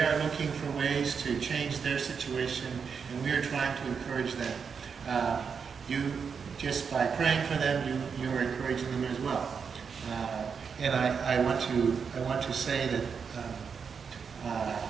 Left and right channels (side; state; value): left; quieter; 6.1 dB